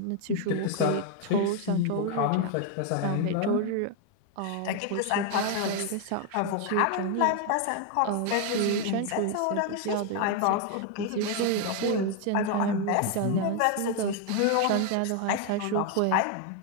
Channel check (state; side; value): different; both; correlation 0.01